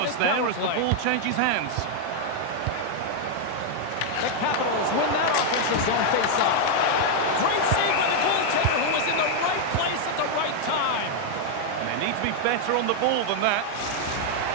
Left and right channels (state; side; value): different; both; correlation 0.00